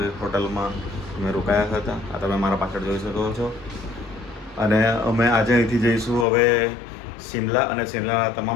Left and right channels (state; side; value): drops out; right; at 6.2 s